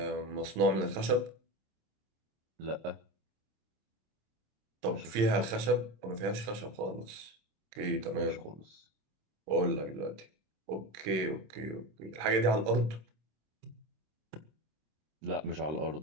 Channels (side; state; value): left; late; 26 ms